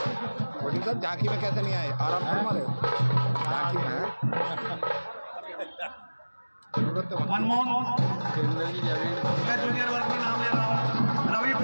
सर झांकी में कैसे नहीं आए? आराम से हमारे झांकी में है। मनमोहन मैं जूनियर वर्ग में नाम ले रहा हूँ। रवि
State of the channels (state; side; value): inverted; both; correlation -1.00